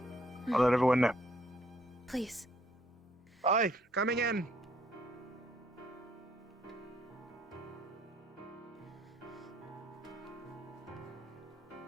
I'll let everyone know. Please. Aye, coming in.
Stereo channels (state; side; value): normal; both; correlation 0.66